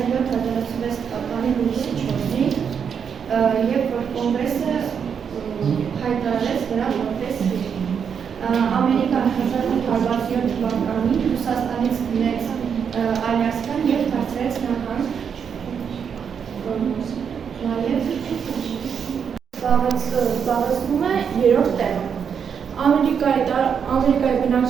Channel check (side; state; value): left; quieter; 7.1 dB